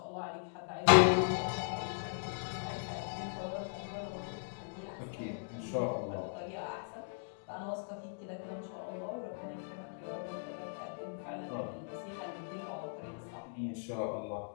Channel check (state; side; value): silent; right; digital silence